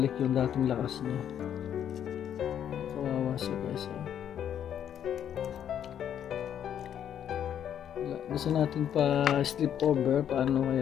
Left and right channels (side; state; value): right; quieter; 9.6 dB